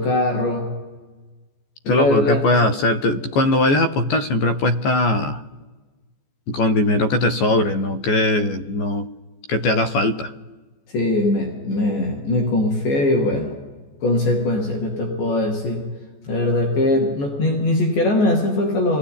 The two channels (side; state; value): right; late; 14 ms